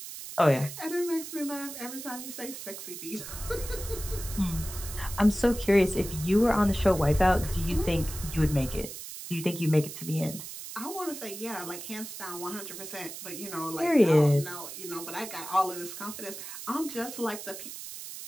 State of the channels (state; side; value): noise; right; hiss, 10 dB below the sound